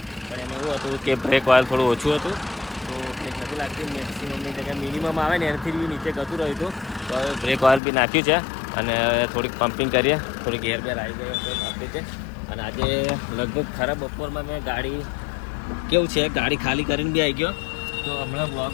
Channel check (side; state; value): right; drops out; at 7.8 s